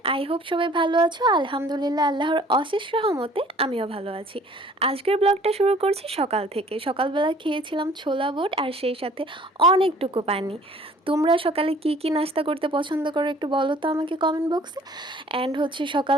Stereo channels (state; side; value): normal; both; correlation 0.53